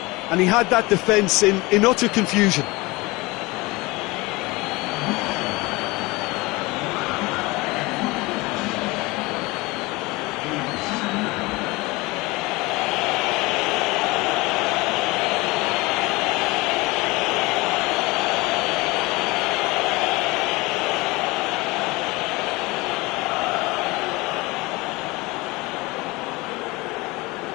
and he had that defence in utter confusion.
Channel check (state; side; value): quieter; right; 23.0 dB